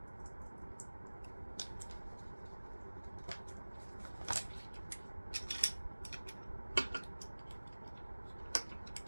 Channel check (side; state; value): both; inverted; correlation -1.00